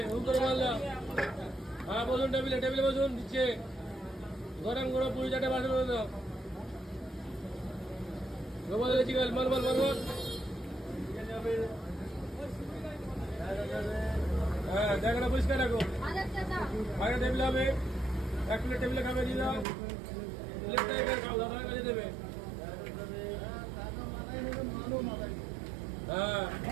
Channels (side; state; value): left; drops out; at 19.7 s